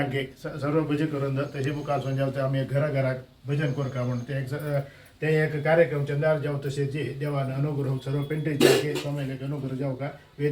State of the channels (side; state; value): both; identical; correlation 1.00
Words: सर्व भजन करून तशी मुखार जावते आम्ही घराघरात भजन करू का म्हणून ते एक कार्यक्रम चंदार जाऊ तसे जे देवानं अनुग्रह सर्व पेंटेचे अंके स्वामीले अनुग्रह जाऊ का